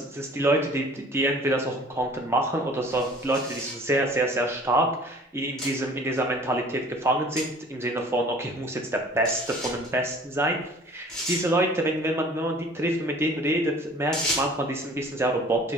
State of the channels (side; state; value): both; normal; correlation 0.49